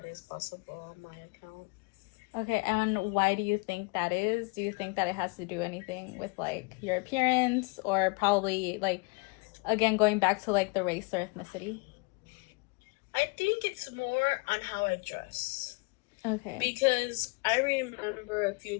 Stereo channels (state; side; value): quieter; right; 30.9 dB